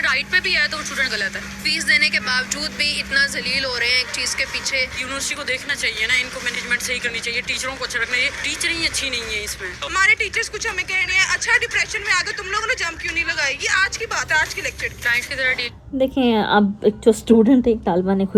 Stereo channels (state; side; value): identical; both; correlation 1.00